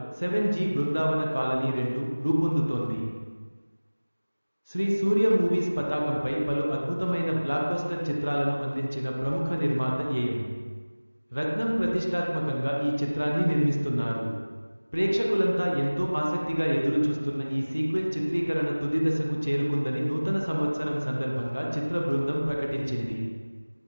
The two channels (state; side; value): inverted; both; correlation -1.00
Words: 7G బృందావన కాలనీ 2 రూపొందుతోంది. శ్రీ సూర్య మూవీస్ పతాకంపై పలు అద్భుతమైన బ్లాక్బస్టర్ చిత్రాలను అందించిన ప్రముఖ నిర్మాత ఏ.ఎం. రత్నం ప్రతిష్టాత్మకంగా ఈ చిత్రాన్ని నిర్మిస్తున్నారు. ప్రేక్షకులంతా ఎంతో ఆసక్తిగా ఎదురుచూస్తున్న ఈ సీక్వెల్ చిత్రీకరణ తుది దశకు చేరుకుందని నూతన సంవత్సరం సందర్భంగా చిత్ర బృందం ప్రకటించింది.